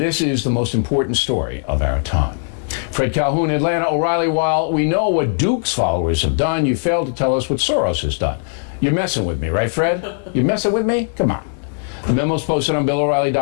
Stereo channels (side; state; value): right; silent; digital silence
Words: is the most important story of our time. Fred Calhoun, Atlanta. O'Reilly, while we know what Duke's followers have done, you failed to tell us what Soros has done. You're messing with me, right, Fred? You're messing with me? Come on. The memo's posted on